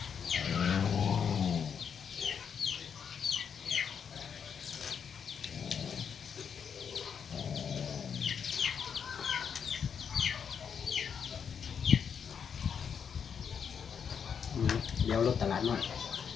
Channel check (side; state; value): right; quieter; 7.1 dB